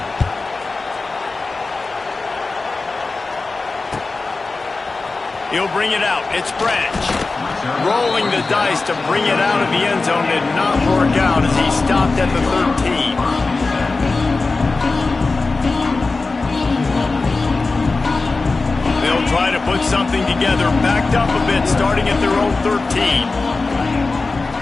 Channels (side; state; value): right; quieter; 3.7 dB